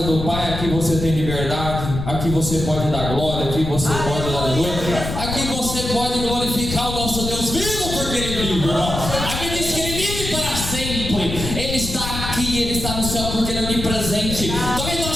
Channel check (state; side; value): noise; left; rumble, 5 dB below the sound